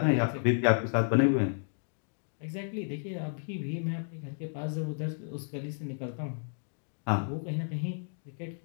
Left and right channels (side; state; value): right; silent; digital silence